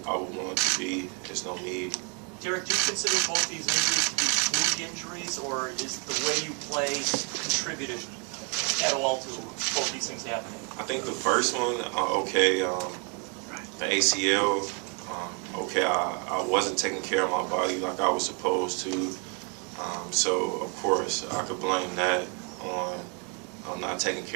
I would want it to be, there's no need. Derrick, do you consider both these injuries to be fluke injuries, or is the way you play contributed at all to both these things happening? I think the first one, the ACL, I wasn't taking care of my body like I was supposed to. So, of course, I could blame that on not taking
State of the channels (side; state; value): left; quieter; 36.3 dB